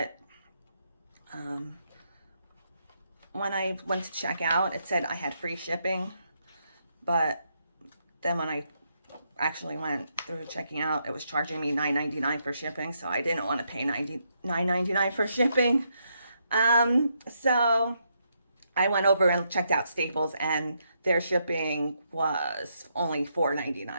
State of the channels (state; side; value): inverted; both; correlation -0.78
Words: when I went to check out, it said I had free shipping. But then when I actually went through checking out, it was charging me $9.99 for shipping. So I didn't want to pay $9.99 for shipping. So I went over and checked out Staples, and their shipping was only